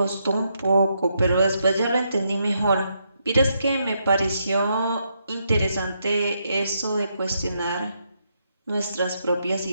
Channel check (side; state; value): both; inverted; correlation -0.79